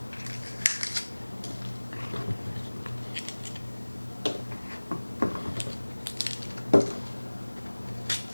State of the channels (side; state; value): both; inverted; correlation -1.00